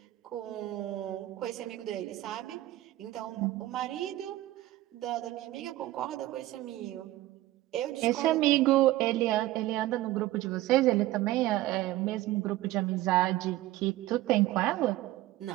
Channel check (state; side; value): quieter; left; 16.2 dB